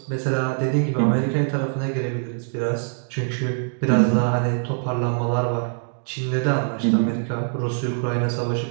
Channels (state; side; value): silent; left; digital silence